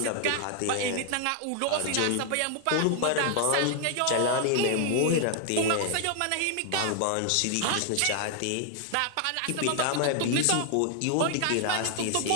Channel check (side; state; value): both; different; correlation 0.00